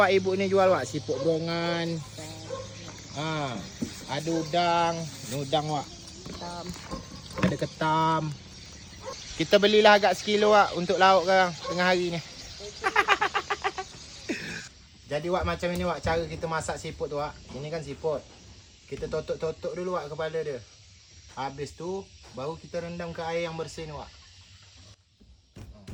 ibu ni jual, Wak. Siput berongan. Ada udang. Ni udang, Wak. Ketam. Ada ketam. Kita belilah agak sekilo, Wak, untuk lauk sekarang tengah hari ni. Jadi, Wak, macam ini, Wak, cara kita masak siput tu, Wak. Ini kan siput. Kita totok-totok dulu, Wak, kepala dia. Habis tu, baru kita rendam ke air yang bersih ni, Wak.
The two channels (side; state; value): both; identical; correlation 1.00